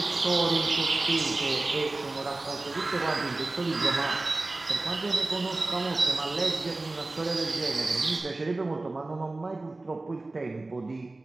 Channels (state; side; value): quieter; left; 3.1 dB